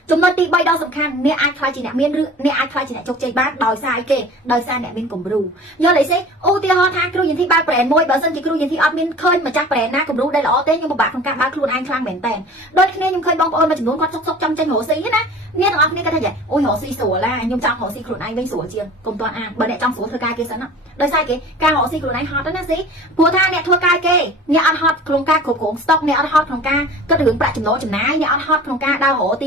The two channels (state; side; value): normal; both; correlation 0.42